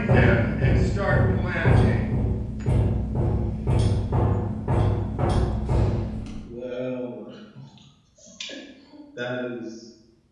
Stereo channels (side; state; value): both; identical; correlation 1.00